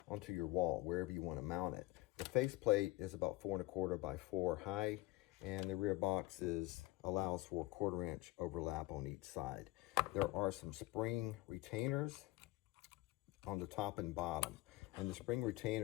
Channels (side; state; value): right; quieter; 19.3 dB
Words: onto your wall, wherever you want to mount it. The faceplate is about 4¼ by 4 high, and the rear box allows for a 1/4 inch overlap on each side. There are some spring retainers on the top and bottom, and the spring